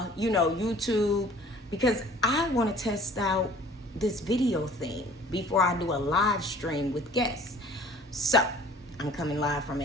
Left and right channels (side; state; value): both; normal; correlation 0.51